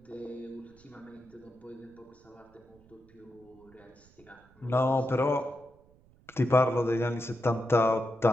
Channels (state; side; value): noise; right; rumble, 29 dB below the sound